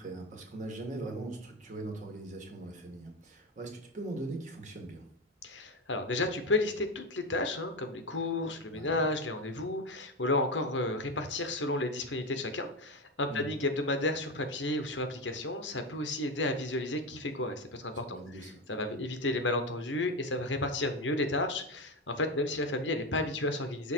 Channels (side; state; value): both; normal; correlation 0.16